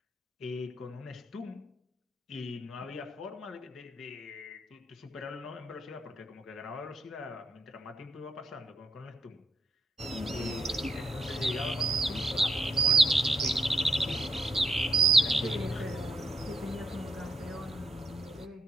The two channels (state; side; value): normal; both; correlation 0.75